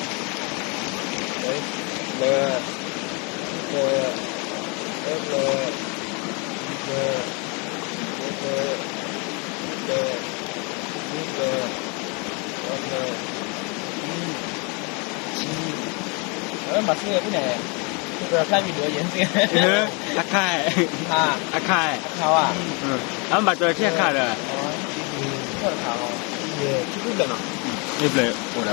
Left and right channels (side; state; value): right; quieter; 32.2 dB